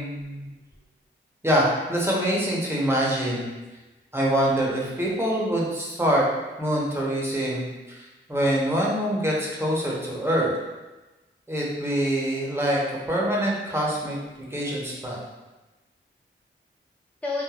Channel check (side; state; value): both; normal; correlation 0.55